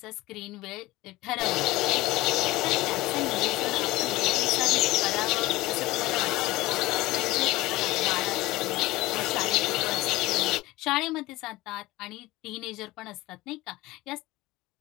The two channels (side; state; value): right; quieter; 19.2 dB